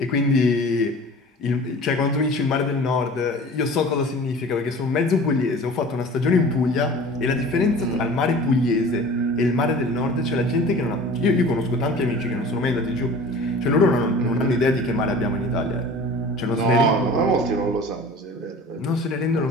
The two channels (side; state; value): both; normal; correlation 0.42